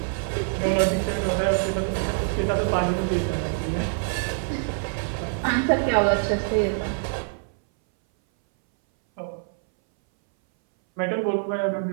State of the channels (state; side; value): silent; left; 60 dB below the other